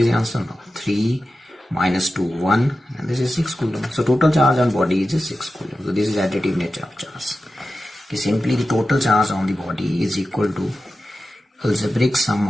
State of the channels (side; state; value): both; normal; correlation 0.93